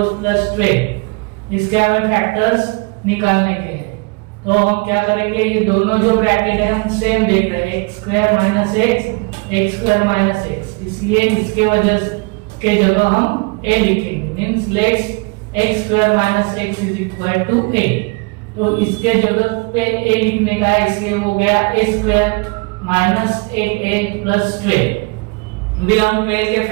plus 12। इसके हमें फैक्टर्स निकालने के हैं, तो हम क्या करेंगे, ये दोनों जो ब्रैकेट है हम सेम देख रहे हैं, x square minus x square minus x, इसलिए इसके वजह के जगह हम a लिखेंगे, means let's x square minus x is equal to a। तो इसके जगह पे a लिखने का है, इसलिए हो गया a square minus 8a plus 12। अभी हम 12 के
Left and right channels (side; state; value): left; quieter; 29.8 dB